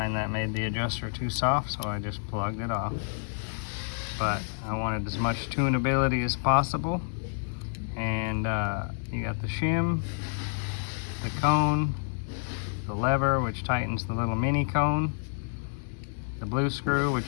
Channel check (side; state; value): right; silent; digital silence